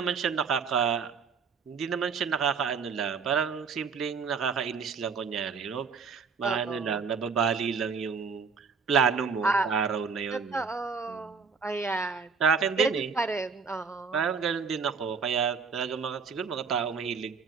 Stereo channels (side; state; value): left; quieter; 5.6 dB